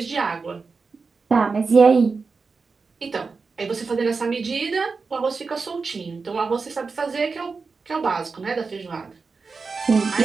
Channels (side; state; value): left; quieter; 4.6 dB